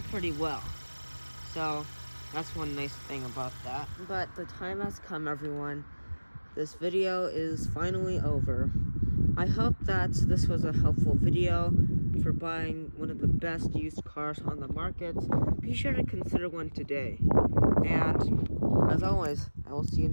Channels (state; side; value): inverted; both; correlation -1.00